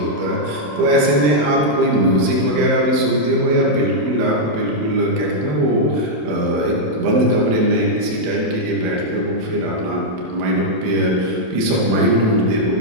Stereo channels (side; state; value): left; late; 27 ms